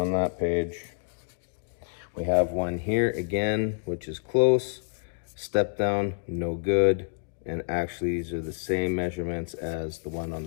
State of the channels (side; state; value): right; silent; digital silence